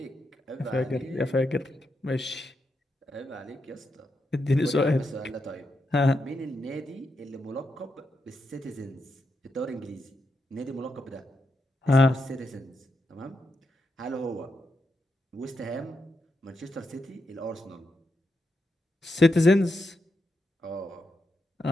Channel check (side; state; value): both; normal; correlation 0.84